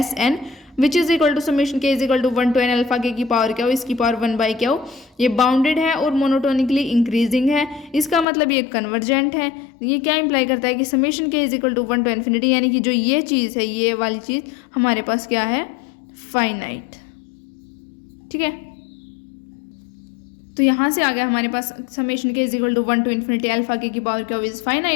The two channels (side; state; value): right; drops out; at 8.2 s